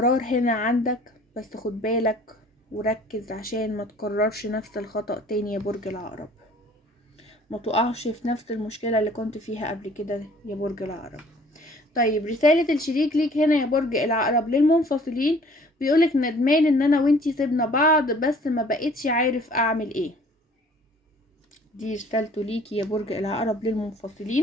هنا عندك، بس خد بالك وركز عشان ما تكررش نفس الخطأ تاني يا برج العقرب، ما تقعش في نفس المشكلة اللي كنت فيها قبل كده يا برج العقرب. طيب، رسالة الشريك ليك هنا يا برج العقرب للمنفصلين، بيقولك ندمان ان انا وانتي سيبنا بعض بس ما بقيتش عارف اعمل ايه. دي رسالته ليكي يا برج العقرب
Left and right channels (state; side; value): normal; both; correlation 0.53